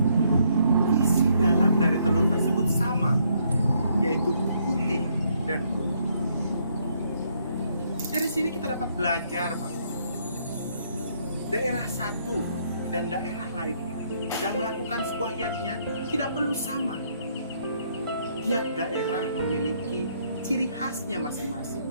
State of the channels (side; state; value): both; inverted; correlation -0.70